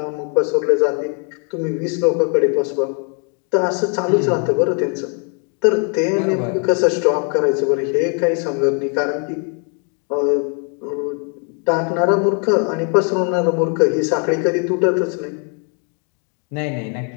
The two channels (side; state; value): right; quieter; 39.6 dB